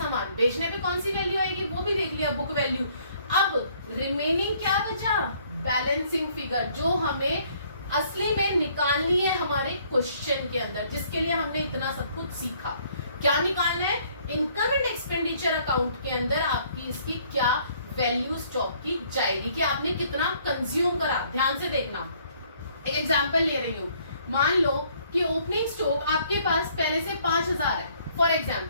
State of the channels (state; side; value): inverted; both; correlation -0.63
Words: बेचने पे कौन सी वैल्यू आएगी वो भी देख लिया, बुक वैल्यू। अब रिमेनिंग क्या बचा? बैलेंसिंग फिगर, जो हमें असली में निकालनी है हमारे क्वेश्चन के अंदर, जिसके लिए हमने इतना सब कुछ सीखा। क्या निकालना है? इनकम एंड एक्सपेंडिचर अकाउंट के अंदर आपकी इसकी क्या वैल्यू स्टॉक की जाएगी, कि आपने कितना कंज्यूम करा। ध्यान से देखना, एक एग्जांपल ले रही हूँ। मान लो कि ओपनिंग स्टॉक आपके पास पहले से 5000 है फॉर